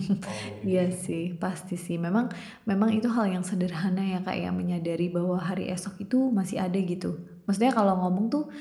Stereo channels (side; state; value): both; identical; correlation 1.00